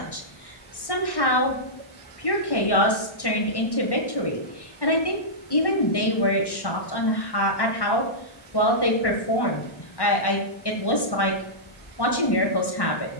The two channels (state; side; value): late; right; 1.1 ms